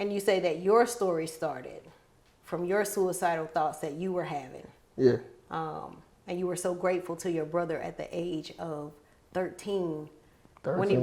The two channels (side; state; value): both; identical; correlation 1.00